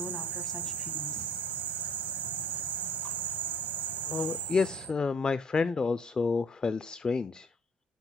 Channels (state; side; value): normal; both; correlation 0.55